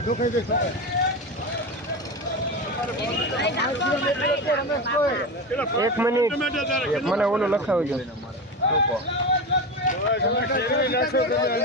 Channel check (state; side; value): normal; both; correlation 0.21